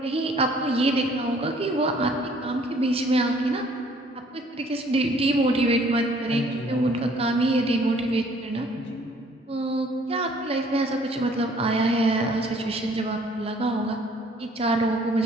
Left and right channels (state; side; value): normal; both; correlation 0.58